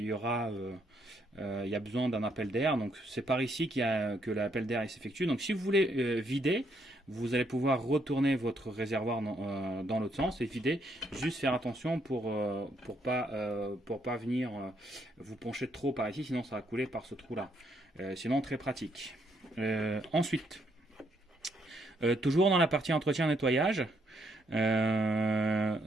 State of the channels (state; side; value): normal; both; correlation 0.73